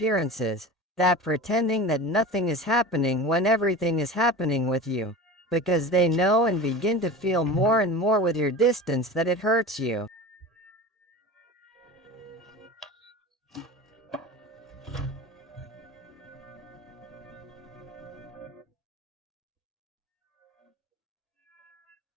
that pretending that nothing is happening when everything is happening with you, because they know and begin to feel more and more with your distance that it hurts you.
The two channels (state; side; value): normal; both; correlation 0.33